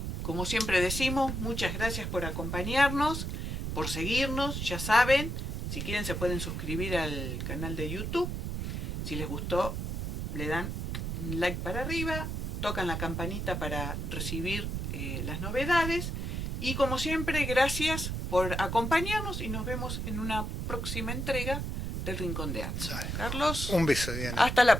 como siempre decimos, muchas gracias por acompañarnos, por seguirnos. Ya saben, si quieren se pueden suscribir al canal de YouTube. Si les gustó, le dan un like para arriba, tocan la campanita para recibir las novedades. Y como siempre, gracias por acompañarnos y nos vemos en una próxima entrega del Rincón de Atzo. Carlos. Un beso, Diana. Hasta la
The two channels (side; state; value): right; noise; rumble, 3 dB below the sound